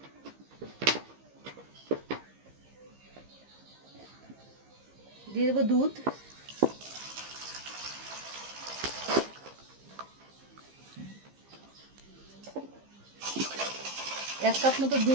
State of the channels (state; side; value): late; left; 15 ms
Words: দিয়ে দেবো দুধ, 1 কাপ মতো